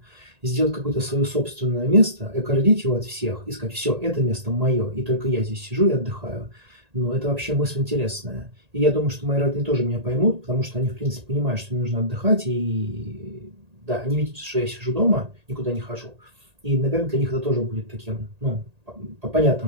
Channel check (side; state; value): left; late; 1.8 ms